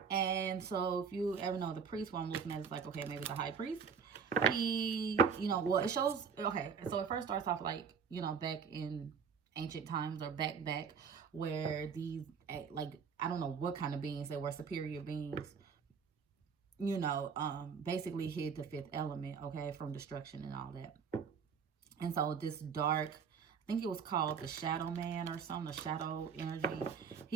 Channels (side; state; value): left; quieter; 6.4 dB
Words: And so if you ever know the priest, what I'm looking at is like, okay, maybe the high priest. He, you know, well, it shows, okay, so it first starts off like, you know, back in ancient times or back where these, like, I don't know what kind of beings they were, superior beings, you know, basically hid the fifth element, okay, from destruction and all that. And so this dark, I think it was called the Shadow Man or something, the Shadow Energy.